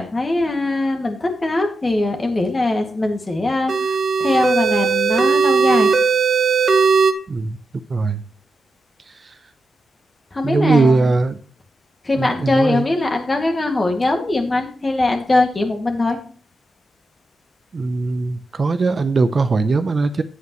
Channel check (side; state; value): both; normal; correlation 0.88